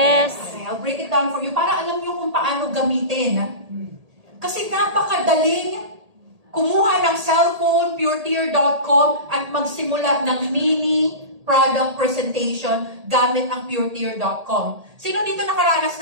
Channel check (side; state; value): left; late; 1.8 ms